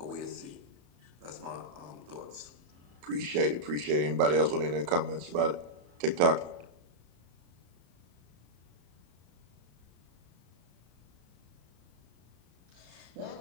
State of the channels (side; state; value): left; late; 34 ms